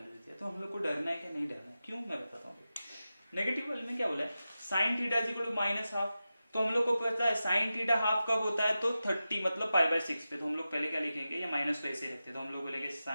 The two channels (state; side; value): inverted; both; correlation -0.93